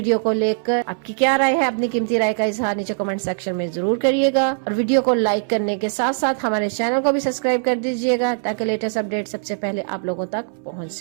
को लेकर आपकी क्या राय है? अपनी कीमती राय का इजहार नीचे कमेंट सेक्शन में जरूर करिएगा और वीडियो को लाइक करने के साथ साथ हमारे चैनल को भी सब्सक्राइब कर दीजिएगा, ताकि लेटेस्ट अपडेट सबसे पहले आप लोगों तक पहुंच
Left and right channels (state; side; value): silent; left; 61 dB below the other